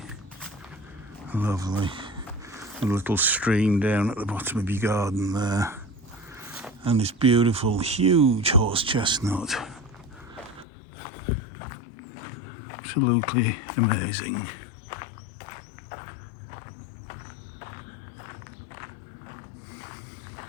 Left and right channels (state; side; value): drops out; right; at 10.7 s